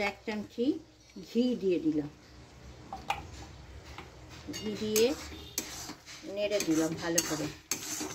1 চামচি ঘি দিয়ে দিলাম। ঘি দিয়ে নেড়ে দিলাম ভালো করে।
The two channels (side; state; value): both; identical; correlation 1.00